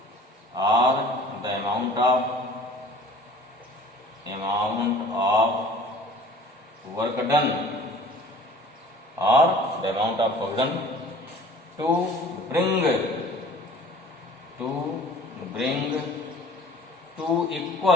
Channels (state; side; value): normal; both; correlation 0.47